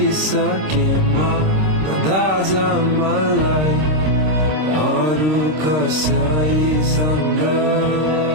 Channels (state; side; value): late; left; 26 ms